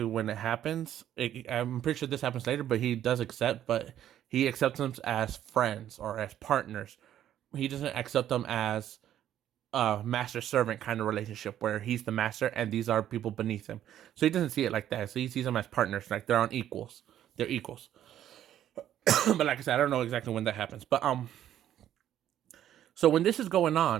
when it happens. I'm pretty sure this happens later, but he does accept, but he accepts them as friends or as partners. He doesn't accept them as a master servant kind of relationship where he's the master and these are people beneath him. So he doesn't see it like that. So he sees them as partners, like they're on equals. They're equals. But like I said, I don't know exactly when that happens. But so when this is going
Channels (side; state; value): left; quieter; 11.3 dB